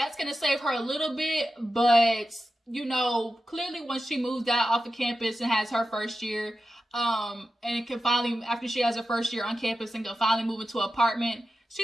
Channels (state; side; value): normal; both; correlation 0.92